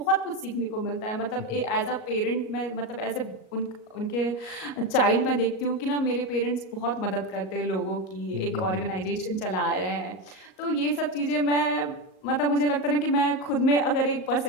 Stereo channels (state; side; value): late; right; 38 ms